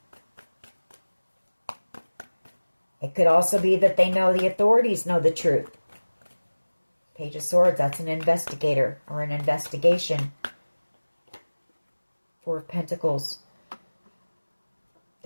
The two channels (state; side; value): inverted; both; correlation -1.00